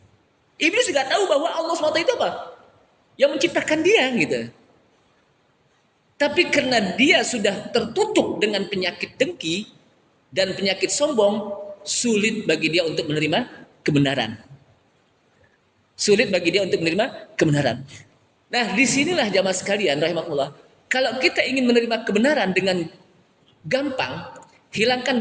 Iblis juga tahu bahwa Allah SWT itu apa? Yang menciptakan dia gitu. Tapi karena dia sudah tertutup dengan penyakit dengki dan penyakit sombong, sulit bagi dia untuk menerima kebenaran. Sulit bagi dia untuk menerima kebenaran. Nah, disinilah jamaah sekalian rahimakumullah. Kalau kita ingin menerima kebenaran dengan gampang, hilangkan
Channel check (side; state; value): both; identical; correlation 1.00